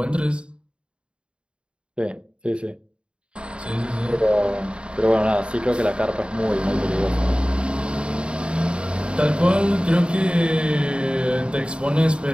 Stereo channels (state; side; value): late; left; 0.054 ms